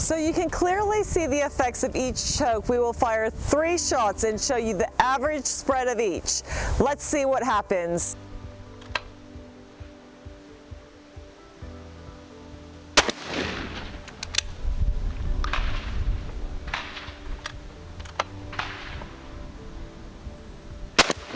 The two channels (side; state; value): both; identical; correlation 1.00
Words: you can clearly see the effects of each choke. We will fire 3 shots and show you the average spread of each. Let's see what happens.